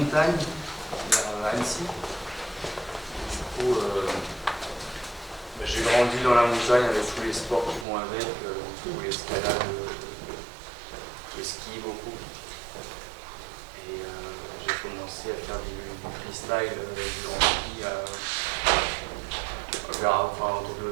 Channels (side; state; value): left; drops out; at 7.9 s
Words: vers Annecy. Du coup, j'ai grandi dans la montagne avec tous les sports qui vont avec, l'escalade, le ski beaucoup. Et j'ai commencé à faire du freestyle, du grand ski